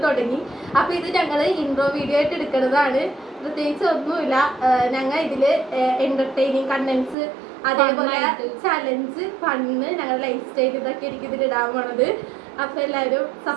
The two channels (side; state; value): left; drops out; at 7.2 s